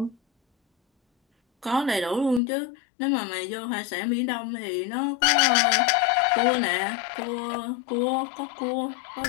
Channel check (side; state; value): right; drops out; at 2.4 s